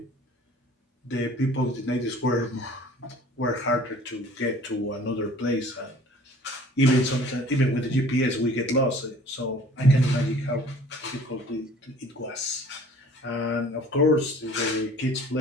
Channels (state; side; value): normal; both; correlation 0.49